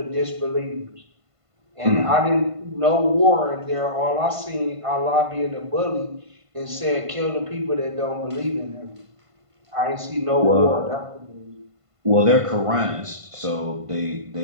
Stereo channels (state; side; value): late; left; 1.5 ms